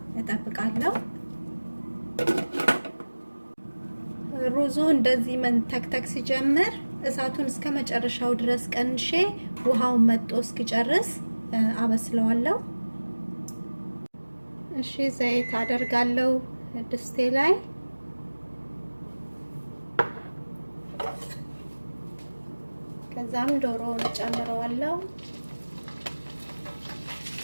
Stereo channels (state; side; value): inverted; both; correlation -1.00